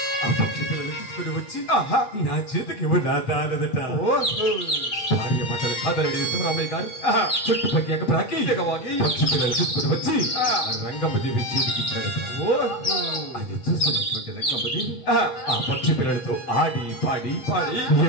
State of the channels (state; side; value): late; right; 7.8 ms